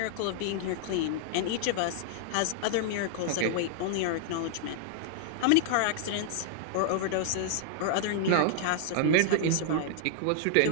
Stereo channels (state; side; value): different; both; correlation -0.01